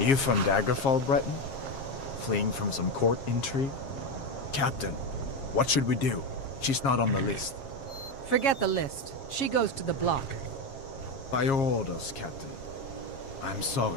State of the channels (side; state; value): right; late; 7.4 ms